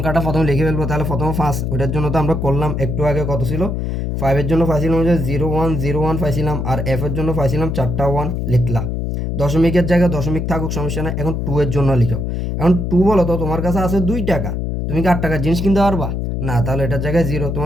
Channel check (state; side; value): noise; left; hum, 2 dB below the sound